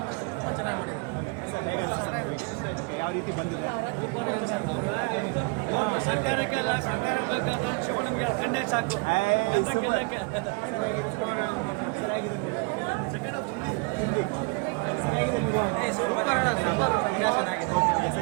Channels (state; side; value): quieter; left; 31.2 dB